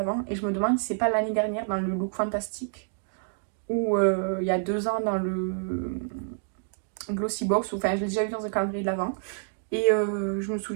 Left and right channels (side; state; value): left; silent; digital silence